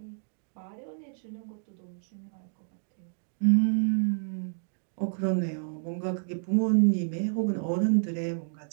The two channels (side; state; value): left; silent; digital silence